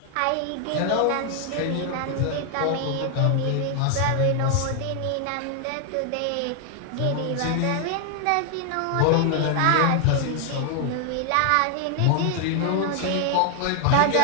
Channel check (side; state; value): both; different; correlation 0.00